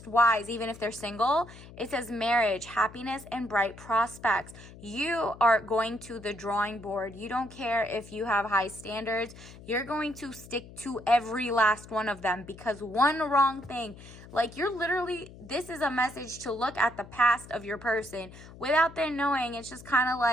wise, even if they're single. It says marriage, happiness, and bright prospects. You are going to the drawing board. You don't care if you have high standards. You're going to stick to every last one of them, because one wrong thing, like, you're literally, this is a message to look at the past of your person without them knowing. It's just kind of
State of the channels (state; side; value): noise; left; hum, 18 dB below the sound